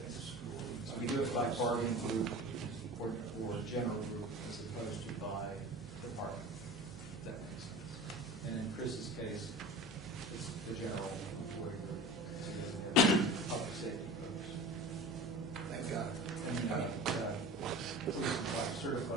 So we do it by bargaining group or general group as opposed to by department. If that makes sense. And in Chris's case, it's the general employee group. So he doesn't have public safety groups. Thank God. And police and fire,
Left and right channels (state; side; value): noise; right; hum, 15 dB below the sound